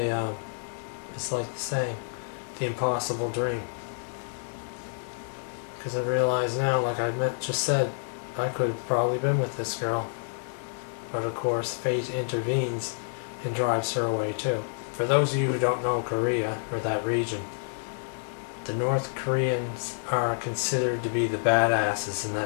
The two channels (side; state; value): right; silent; digital silence